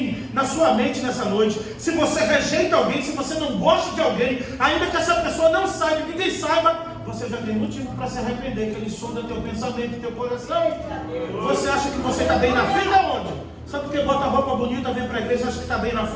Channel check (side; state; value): both; identical; correlation 1.00